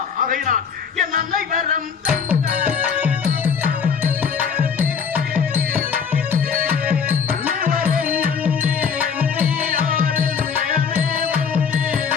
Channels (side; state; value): right; quieter; 6.5 dB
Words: ஆகையினால் என் அன்னை வரம்